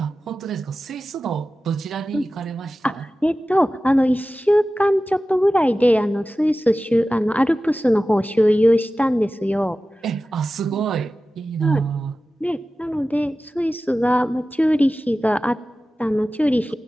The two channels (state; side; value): normal; both; correlation 0.95